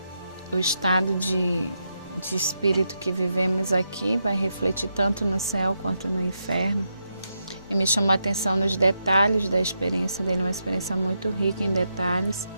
o estado de espírito que vivemos aqui vai refletir tanto no céu quanto no inferno. E me chamou a atenção nos detalhes da experiência dele, uma experiência muito rica em detalhes.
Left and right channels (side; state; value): both; inverted; correlation -0.84